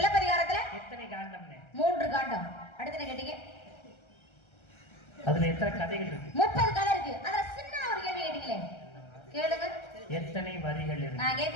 எத்தனை காண்டம்னு? 3 காண்டம். அடுத்து என்ன கேட்டீங்க? அதுல எத்தனை கதைகள் இருக்கு? 30 கதை இருக்கு. அதுல சின்ன ஒரு கேள்வி கேட்டீங்களே, கேளுங்க. எத்தனை வரிகள் இருக்கு? நான்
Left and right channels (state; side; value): late; right; 1.3 ms